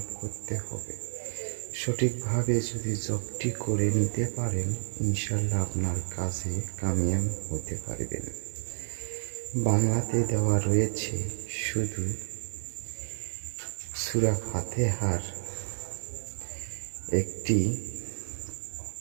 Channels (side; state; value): left; silent; digital silence